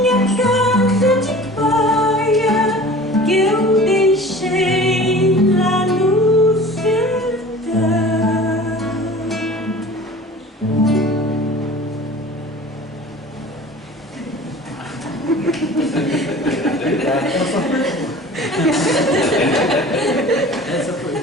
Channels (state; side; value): normal; both; correlation 0.42